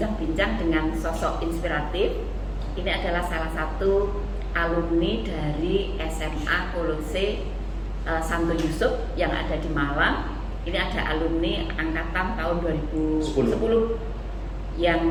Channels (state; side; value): identical; both; correlation 1.00